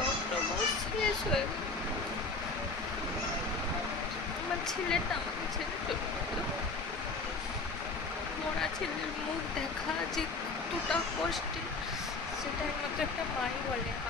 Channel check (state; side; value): quieter; right; 3.8 dB